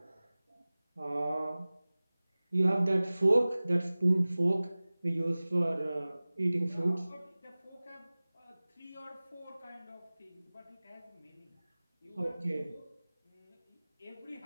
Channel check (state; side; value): inverted; both; correlation -0.99